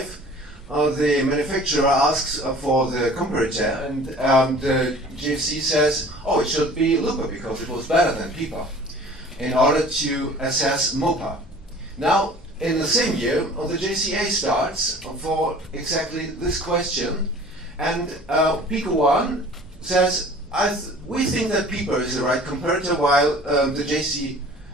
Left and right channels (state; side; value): normal; both; correlation 0.46